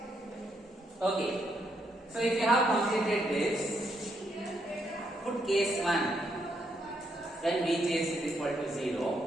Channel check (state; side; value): normal; both; correlation 0.77